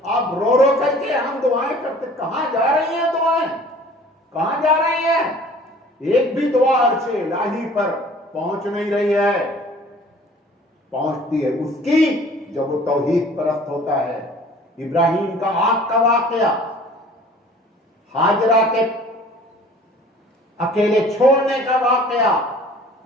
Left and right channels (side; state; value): both; normal; correlation 0.50